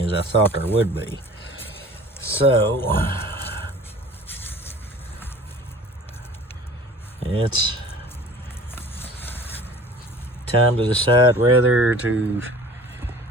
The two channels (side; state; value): both; normal; correlation 0.45